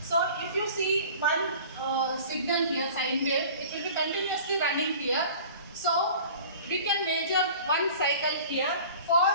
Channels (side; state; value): both; inverted; correlation -0.44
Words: So if you see one signal here, sine wave, it will be continuously running here. So we can measure one cycle here for